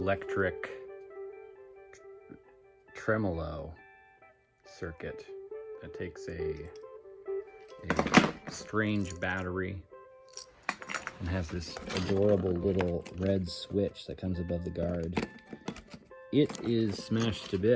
tremolo circuit that takes a strange battery and has this adorable little red switch that comes above the guard. It is smashed to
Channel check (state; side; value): identical; both; correlation 1.00